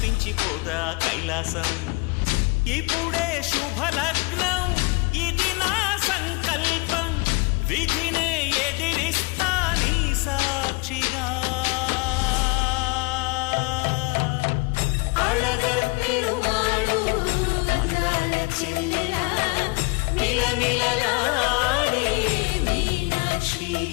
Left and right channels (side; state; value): right; quieter; 28.2 dB